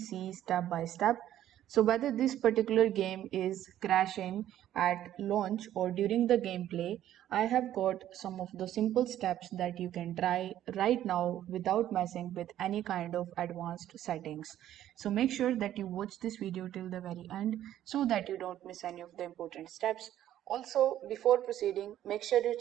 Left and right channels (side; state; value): left; quieter; 12.1 dB